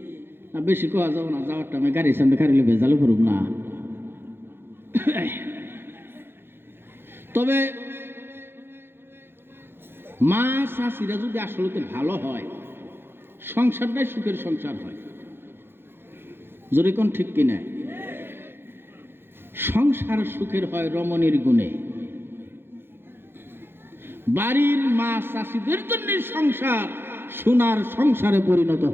বেশি কোয়া যাবো না, যাওয়ার টাইমে গাড়ির সামনে খারিলে ভেজালে করুক না। তবে মা চাষিরা যদি আসলে ভালো হয়, সংসারটাই সুখের সংসার হয়। যদি কোন ঠিক কিনা? সংসার সুখের হয় রমণীর গুণে। বাড়ির মা চাষিদের জন্য সংসার সোনার সংসারে পরিণত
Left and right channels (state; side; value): late; left; 0.11 ms